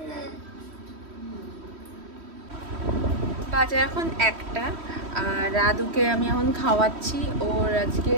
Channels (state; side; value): late; left; 3.1 ms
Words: বাজে এখন 1টা, আর আদুকে আমি এখন খাওয়াচ্ছি। ওর